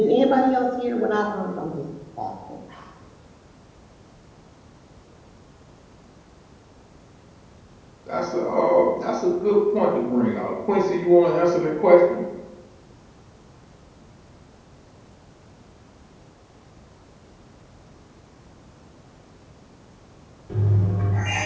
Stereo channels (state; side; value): identical; both; correlation 1.00